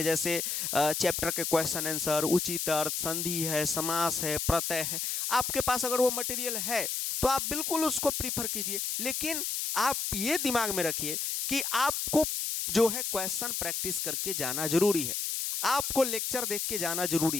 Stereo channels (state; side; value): noise; left; hiss, 1 dB below the sound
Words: जैसे चैप्टर के क्वेश्चन आंसर, उचित अर्थ, संधि है, समास है, प्रत्यय है। आपके पास अगर वो मटेरियल है तो आप बिल्कुल उसको प्रीफर कीजिए, लेकिन आप ये दिमाग में रखिए कि आपको जो है क्वेश्चन प्रैक्टिस करके जाना जरूरी है, आपको लेक्चर देख के जाना